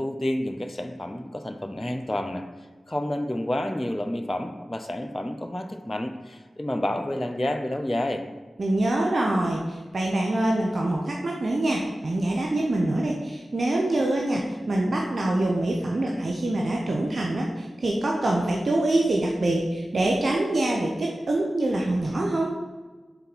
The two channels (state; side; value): normal; both; correlation 0.95